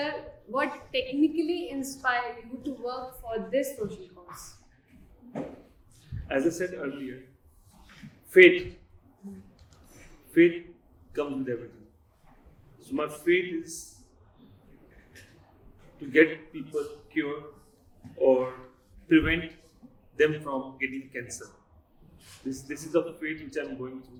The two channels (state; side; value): identical; both; correlation 1.00